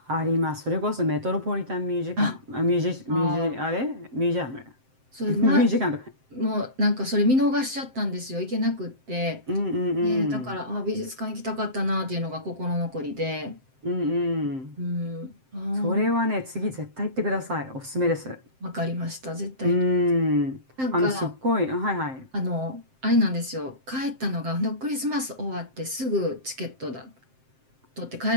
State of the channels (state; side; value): late; left; 7.7 ms